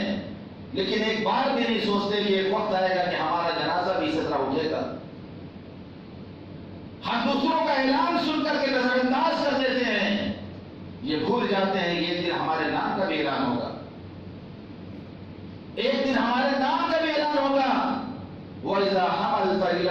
لیکن ایک بار بھی نہیں سوچتے کہ ایک وقت آئے گا کہ ہمارا جنازہ بھی اسی طرح اٹھے گا. ہم دوسروں کا اعلان سن کر کے نظر انداز کر دیتے ہیں, یہ بھول جاتے ہیں یہ دن ہمارے نام کا بھی اعلان ہوگا, ایک دن ہمارے نام کا بھی اعلان ہوگا. وَإِذَا حَمَلْتَ إِلَى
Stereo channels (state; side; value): identical; both; correlation 1.00